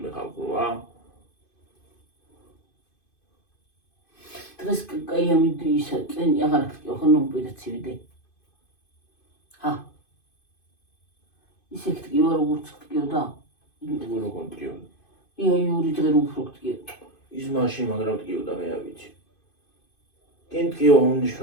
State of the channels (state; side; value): late; right; 2.5 ms